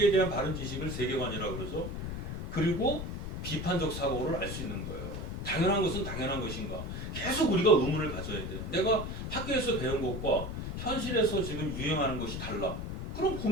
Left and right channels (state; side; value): noise; left; rumble, 5 dB below the sound